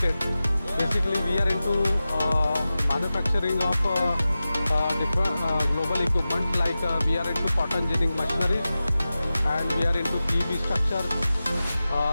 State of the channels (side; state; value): both; inverted; correlation -0.94